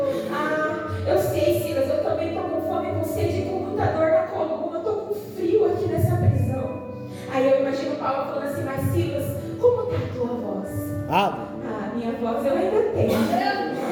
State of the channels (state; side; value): identical; both; correlation 1.00